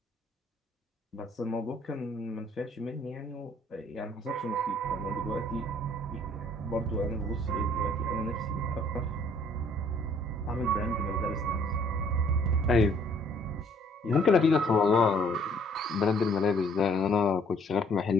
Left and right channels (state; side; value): normal; both; correlation 0.61